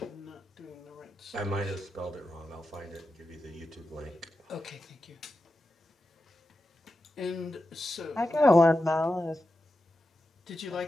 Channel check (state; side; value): normal; both; correlation 0.90